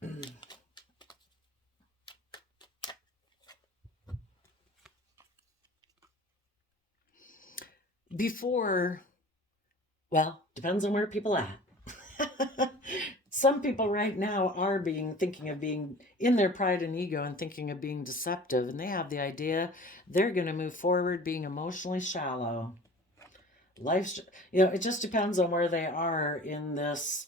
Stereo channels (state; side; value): normal; both; correlation 0.43